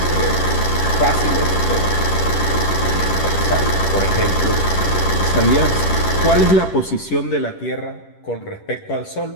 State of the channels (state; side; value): late; right; 10 ms